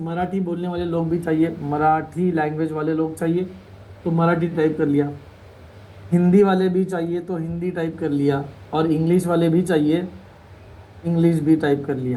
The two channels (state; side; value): identical; both; correlation 1.00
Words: बोलने वाले लोग भी चाहिए, मराठी लैंग्वेज वाले लोग चाहिए, तो मराठी टाइप कर लिया। हिंदी वाले भी चाहिए तो हिंदी टाइप कर लिया, और इंग्लिश वाले भी चाहिए, इंग्लिश भी टाइप कर